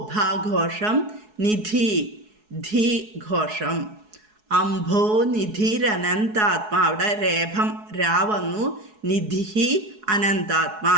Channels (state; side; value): late; left; 4.7 ms